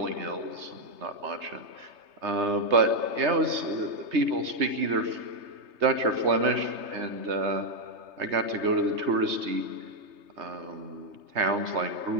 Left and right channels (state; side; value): late; left; 3.3 ms